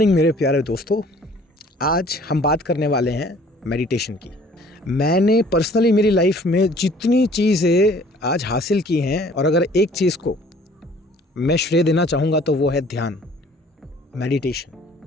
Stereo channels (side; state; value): both; normal; correlation 0.54